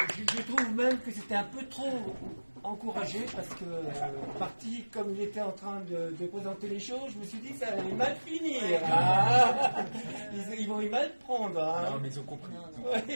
Je trouve même que c'était un peu trop encouragé parce que parti comme il était en train de présenter les choses, je me suis dit que ça allait mal finir. Ils vont y mal prendre. Non, mais ils ont compris.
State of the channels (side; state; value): both; inverted; correlation -1.00